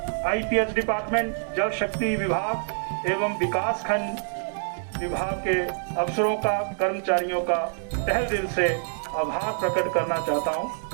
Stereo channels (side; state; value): left; silent; digital silence